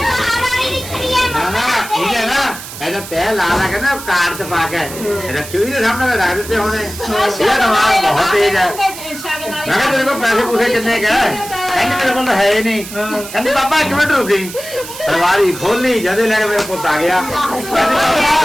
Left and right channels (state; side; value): noise; right; hiss, 12 dB below the sound